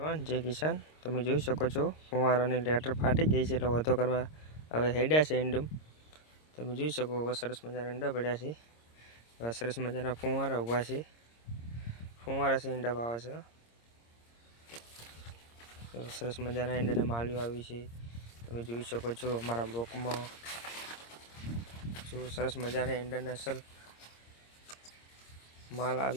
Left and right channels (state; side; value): late; right; 26 ms